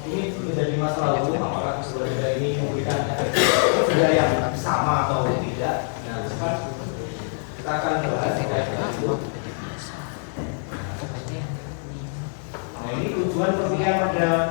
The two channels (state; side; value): silent; right; 61 dB below the other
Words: ini menjadi masalah hukum apakah sebuah denda ini memberikan efek denda yang sama atau tidak. Nah, kan kita akan bahas terkait dengan itu. Nah, ini tujuan perkuliahan pada